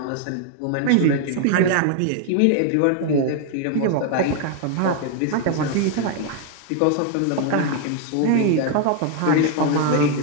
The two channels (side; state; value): both; different; correlation 0.00